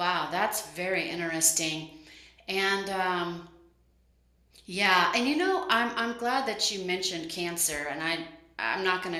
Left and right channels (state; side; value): identical; both; correlation 1.00